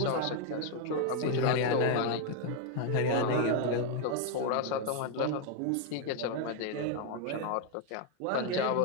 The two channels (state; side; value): different; both; correlation 0.01